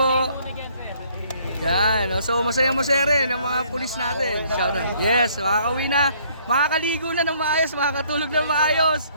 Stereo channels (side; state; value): both; inverted; correlation -0.63